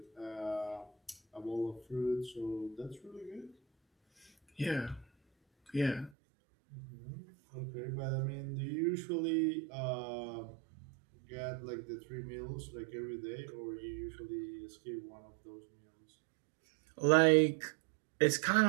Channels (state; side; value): drops out; left; at 6.1 s